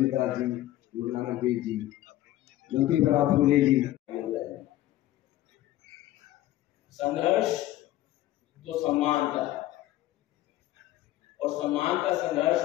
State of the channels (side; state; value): right; quieter; 14.8 dB